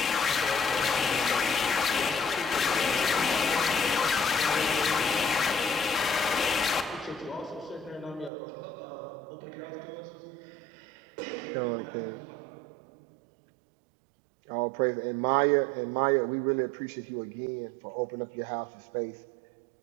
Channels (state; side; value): drops out; left; at 8.3 s